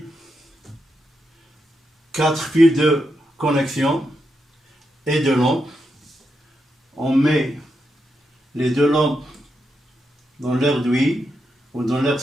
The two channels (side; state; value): both; normal; correlation 0.84